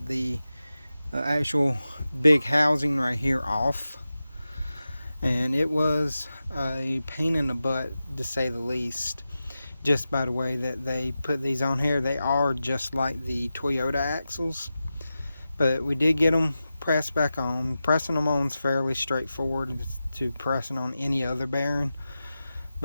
the actual big housing right here off. And it was a pain in the butt, to say the least, just by the way that they put these on here. They are just like the Toyota axles, but we did get them pressed back on. Pressing them on is fairly straightforward to pressing on any other bearing,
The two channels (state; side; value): inverted; both; correlation -0.93